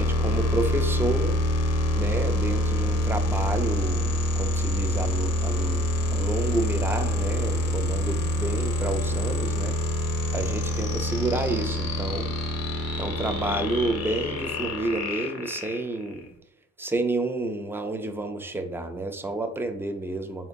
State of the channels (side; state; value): both; normal; correlation 0.55